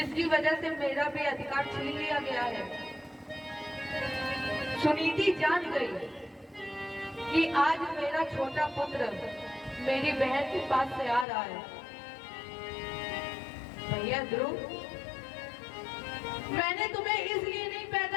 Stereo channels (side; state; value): right; drops out; at 11.2 s